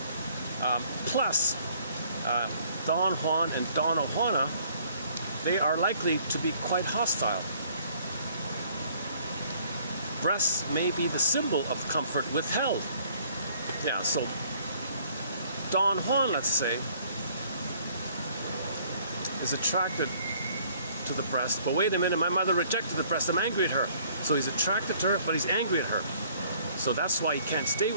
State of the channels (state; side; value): inverted; both; correlation -0.59